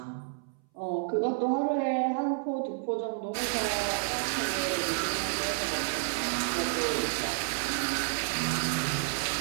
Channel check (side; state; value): left; silent; 58 dB below the other